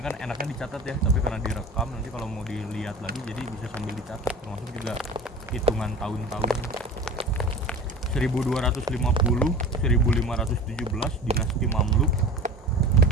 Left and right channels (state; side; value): normal; both; correlation 0.36